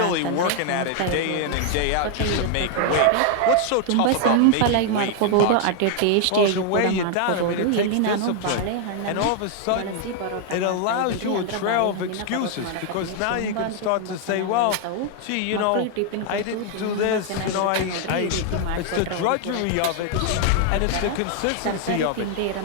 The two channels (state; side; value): different; both; correlation 0.00